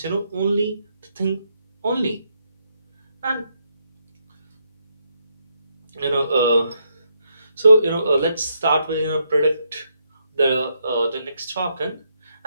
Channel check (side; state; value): both; inverted; correlation -0.77